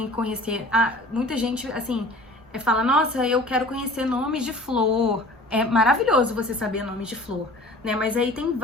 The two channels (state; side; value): normal; both; correlation 0.45